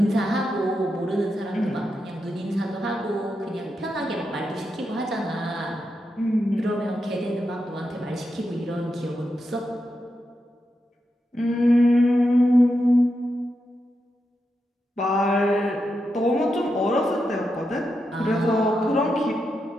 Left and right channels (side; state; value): both; normal; correlation 0.86